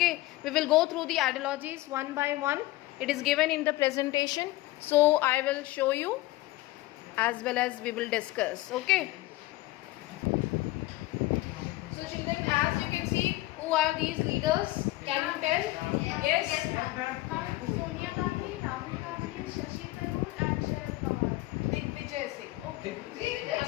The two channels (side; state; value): right; quieter; 18.2 dB